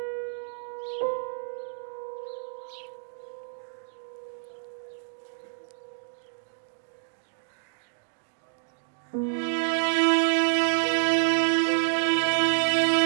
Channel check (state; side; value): silent; left; digital silence